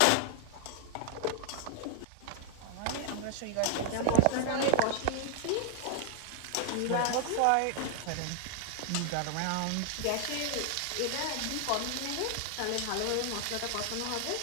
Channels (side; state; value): both; different; correlation 0.00